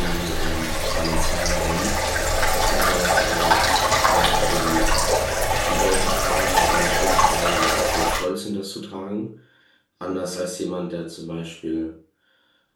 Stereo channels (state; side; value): identical; both; correlation 1.00